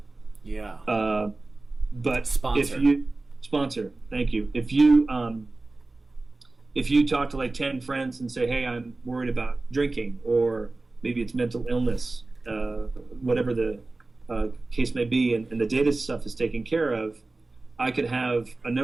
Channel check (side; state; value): left; quieter; 3.2 dB